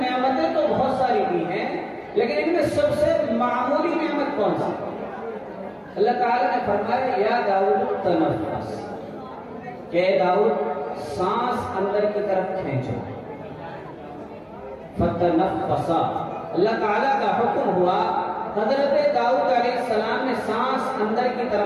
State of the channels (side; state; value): both; identical; correlation 1.00